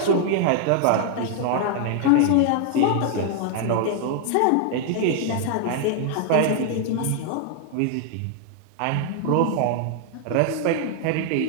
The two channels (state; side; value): different; both; correlation 0.00